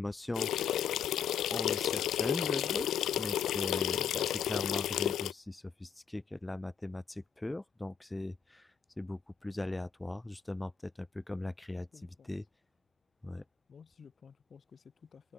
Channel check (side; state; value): right; quieter; 7.2 dB